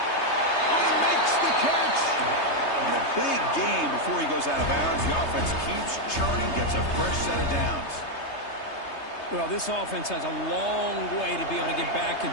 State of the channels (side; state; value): right; late; 3.3 ms